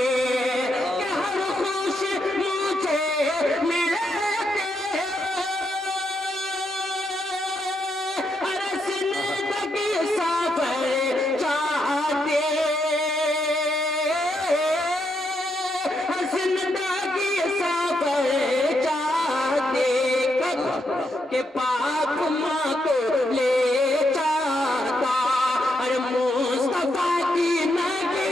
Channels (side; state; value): both; normal; correlation 0.80